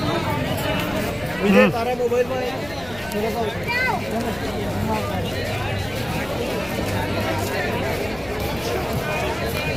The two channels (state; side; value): noise; left; rumble, 18 dB below the sound